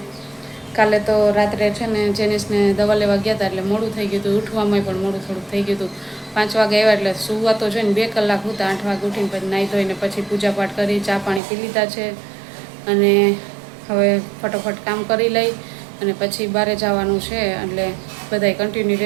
કાલે તો રાત્રે છે ને જેનિસને દવા લેવા ગયા હતા એટલે મોડું થઈ ગયું હતું, ઉઠવામાં પણ મોડું થોડુંક થઈ ગયું હતું. 5 વાગે આવ્યા એટલે સુવા તો છે ને 2 કલાક હતા. 8 વાગે ઉઠીને પછી નાહી ધોઈને પછી પૂજાપાઠ કરી, ચા પાણી પી લીધા છે અને હવે ફટોફટ કામ કરી લઈ અને પછી બહાર જવાનું છે. એટલે બધાય કન્ટિન્યુ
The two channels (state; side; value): drops out; left; at 11.4 s